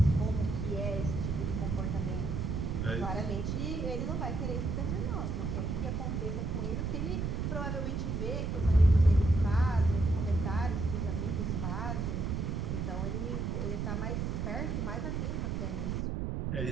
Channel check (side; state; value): right; noise; rumble, 1 dB below the sound